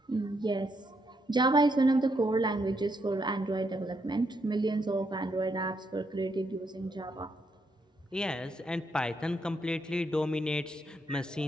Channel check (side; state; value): both; normal; correlation 0.77